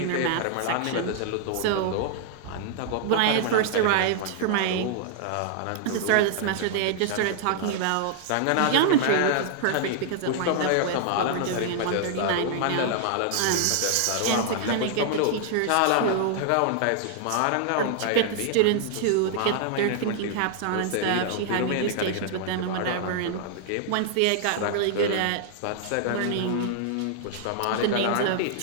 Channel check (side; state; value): both; different; correlation -0.01